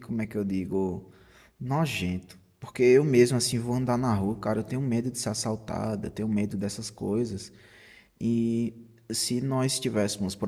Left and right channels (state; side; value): identical; both; correlation 1.00